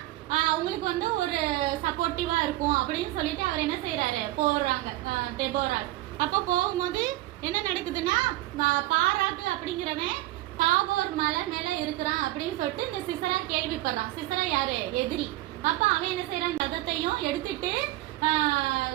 அவங்களுக்கு வந்து ஒரு சப்போர்ட்டிவா இருக்கும் அப்படின்னு சொல்லிட்டு அவர் என்ன செய்யறாரு, போறாங்க தெபோரால். அப்ப போகும்போது என்ன நடக்குதுன்னா, பாராக்கு அப்படிங்கிறவன் தாபோர் மலை மேல இருக்கிறான் அப்படின்னு சொல்லிட்டு இந்த சிசரா கேள்விப்படுறான். சிசரா யாரு, எதிரி. அப்ப அவன் என்ன செய்யறான், ரதத்தையும் எடுத்துட்டு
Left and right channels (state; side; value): quieter; left; 17.0 dB